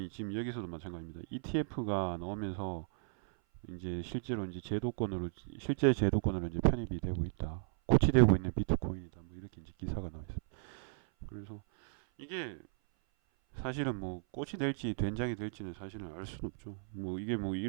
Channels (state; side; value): silent; left; 54 dB below the other